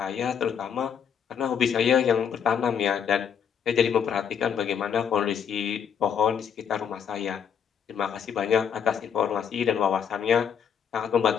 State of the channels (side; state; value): right; quieter; 7.7 dB